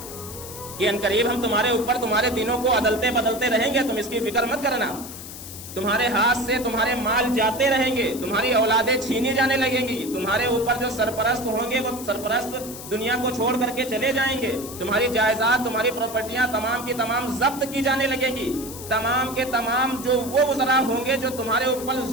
کہ عنقریب ہم تمہارے اوپر تمہارے دینوں کو عدلتے بدلتے رہیں گے، تم اس کی فکر مت کرنا۔ تمہارے ہاتھ سے تمہارے مال جاتے رہیں گے، تمہاری اولادیں چھینی جانے لگیں گی، تمہارے اوپر جو سرپرست ہوں گے وہ سرپرست دنیا کو چھوڑ کر کے چلے جائیں گے، تمہاری جائیداد تمہاری پراپرٹیاں تمام کی تمام ضبط کی جانے لگیں گی، تمام کے تمام جو وہ وزراء ہوں گے جو تمہارے اوپر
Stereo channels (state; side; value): noise; left; hiss, 12 dB below the sound